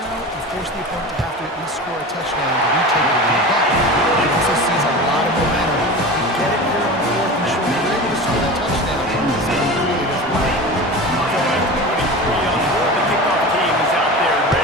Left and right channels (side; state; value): both; normal; correlation 0.31